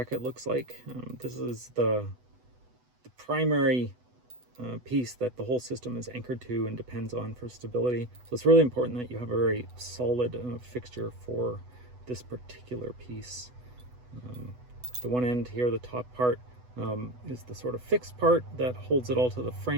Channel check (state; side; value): late; left; 8.1 ms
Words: looks like. This is the primary piece that the whole system is anchored to and depends on for stability. So it's really important that you have a very solid fixture for this particular piece. The one end here, the top part, is the sort of fixed part that holds it all to the